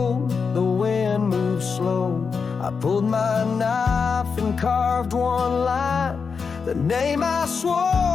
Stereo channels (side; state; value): right; quieter; 5.5 dB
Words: the wind moved slow. I pulled my knife and carved one line, the name I